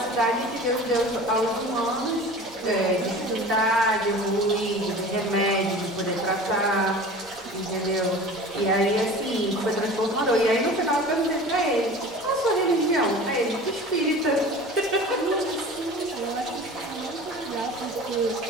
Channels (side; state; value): both; normal; correlation 0.39